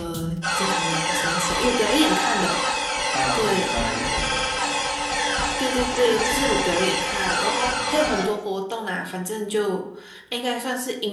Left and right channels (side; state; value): both; identical; correlation 1.00